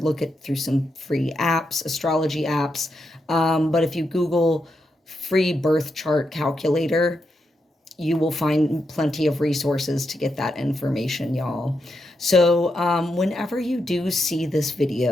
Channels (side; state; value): both; normal; correlation 0.84